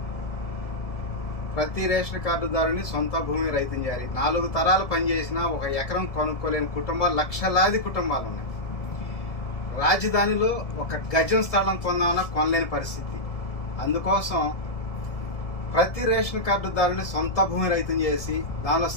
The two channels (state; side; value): late; right; 1.7 ms